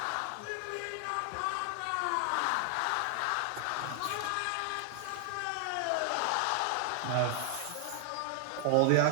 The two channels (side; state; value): both; different; correlation 0.00